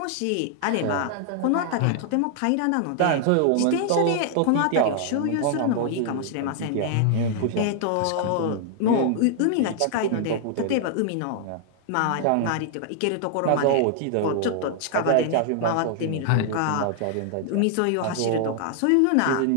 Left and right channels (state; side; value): different; both; correlation 0.00